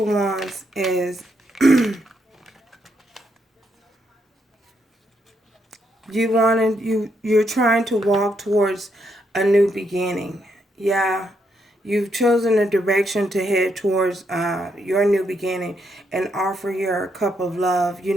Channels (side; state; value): both; normal; correlation 0.77